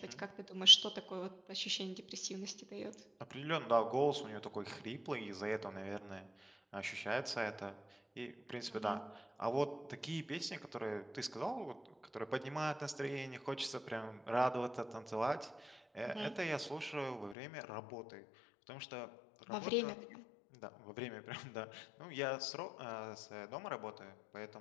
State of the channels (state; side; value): drops out; right; at 17.4 s